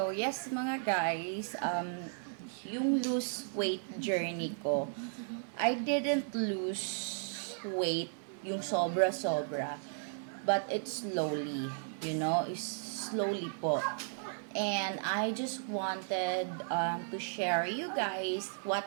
yes mga guys, yung lose weight journey ko, I didn't lose weight yung sobra-sobra, but it's slowly, it's slowly po. And I just wanted to share you guys what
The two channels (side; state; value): left; silent; 54 dB below the other